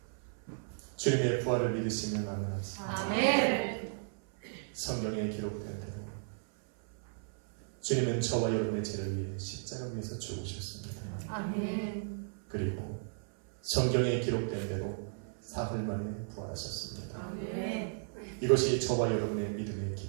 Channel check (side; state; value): left; silent; 55 dB below the other